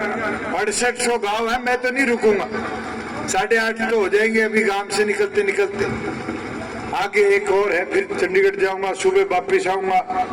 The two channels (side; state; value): both; identical; correlation 1.00